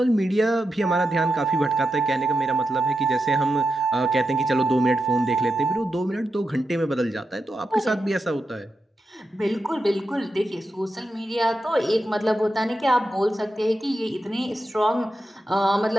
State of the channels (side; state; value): both; normal; correlation 0.88